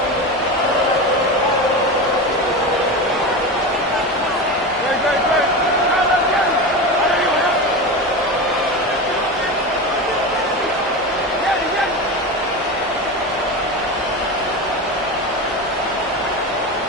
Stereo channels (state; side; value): normal; both; correlation 0.23